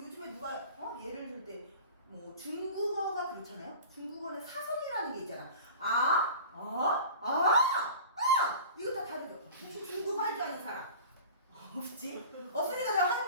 누가 예를 들 때 뭐 중국어가 그렇잖아요. 중국어는 사성이라는 게 있잖아. 이거 다 다르죠. 혹시 중국어 할 줄 아는 사람? 없지? 없으니까 내가 하는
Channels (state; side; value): inverted; both; correlation -0.40